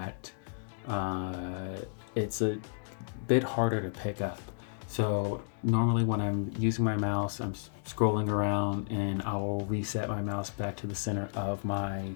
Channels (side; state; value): right; silent; digital silence